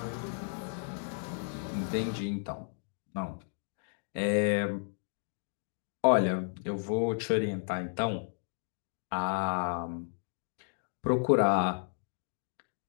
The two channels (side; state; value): right; silent; digital silence